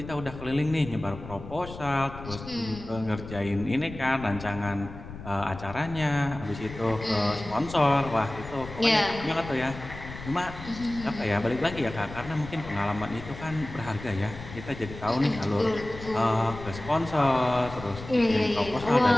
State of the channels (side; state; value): left; noise; rumble, 13 dB below the sound